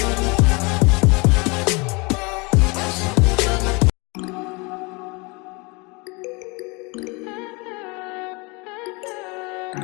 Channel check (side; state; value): right; quieter; 28.2 dB